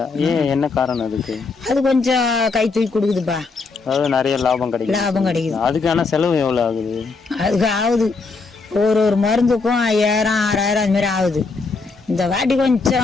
ஏன், என்ன காரணம் அதுக்கு? அது கொஞ்சம் கை தூக்கி கொடுக்குதுப்பா. அதாவது நிறைய லாபம் கிடைக்குது. அதுக்கான செலவு எவ்வளவு ஆகுது? அதுக்கு ஆகுது ஒரு மருந்துக்கும் 5000-6000 அது மாதிரி ஆகுது. இந்த வாட்டி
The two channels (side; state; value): right; quieter; 4.2 dB